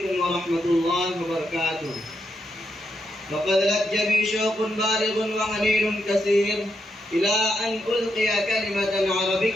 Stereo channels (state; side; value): normal; both; correlation 0.82